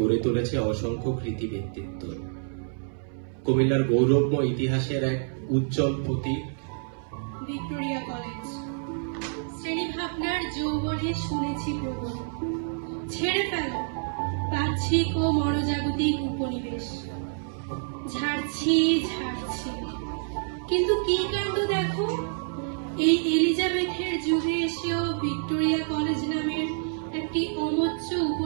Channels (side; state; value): left; silent; 60 dB below the other